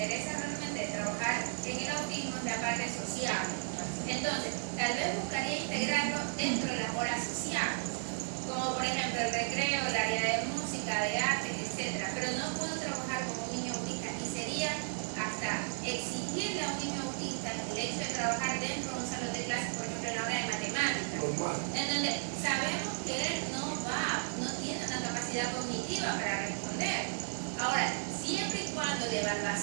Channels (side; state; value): left; silent; 55 dB below the other